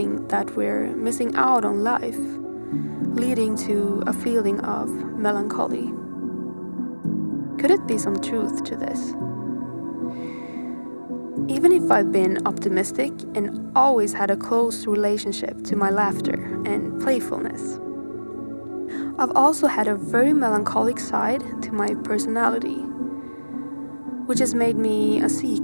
that we're missing out on life, leading to a feeling of melancholy. Could it be some truth to this? Even if I've been optimistic and always had a close relationship to my laughter and playfulness, I've also had a very melancholic side to my personality, which has made me a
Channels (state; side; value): inverted; both; correlation -1.00